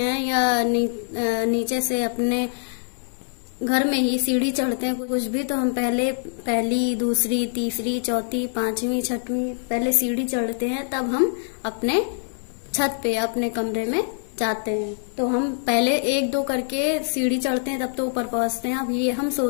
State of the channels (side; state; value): right; silent; digital silence